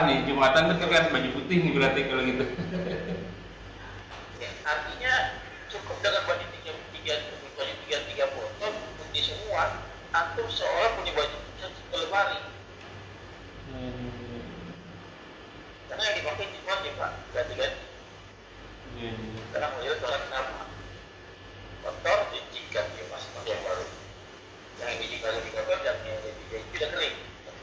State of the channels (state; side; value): identical; both; correlation 1.00